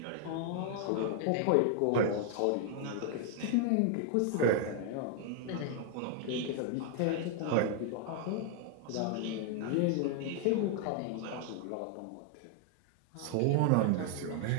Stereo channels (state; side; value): different; both; correlation 0.00